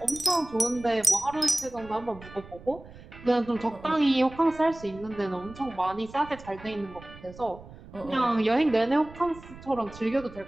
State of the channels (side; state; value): right; noise; rumble, 18 dB below the sound